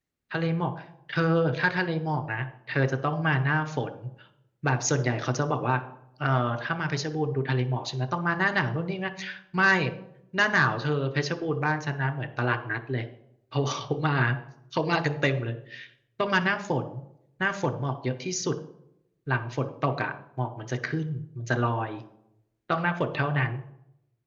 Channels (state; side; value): identical; both; correlation 1.00